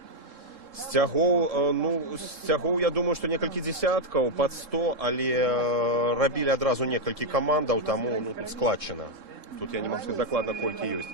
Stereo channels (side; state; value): left; late; 3.7 ms